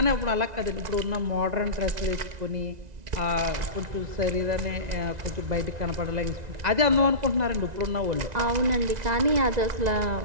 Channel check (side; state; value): left; late; 1.9 ms